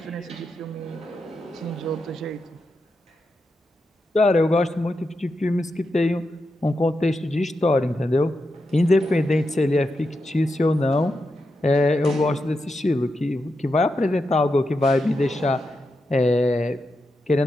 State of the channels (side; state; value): both; normal; correlation 0.87